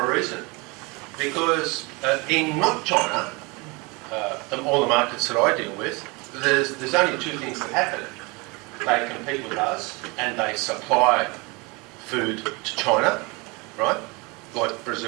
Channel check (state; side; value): quieter; left; 27.2 dB